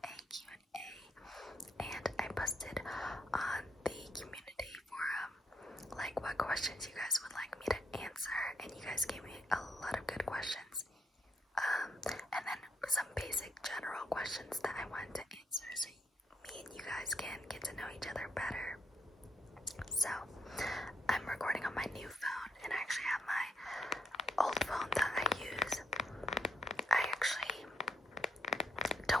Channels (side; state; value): both; normal; correlation 0.76